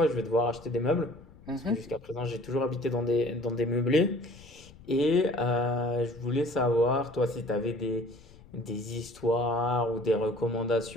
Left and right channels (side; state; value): left; noise; rumble, 22 dB below the sound